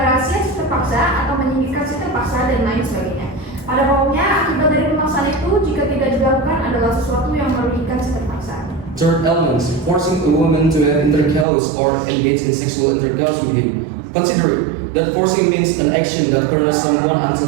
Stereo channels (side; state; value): left; drops out; at 11.5 s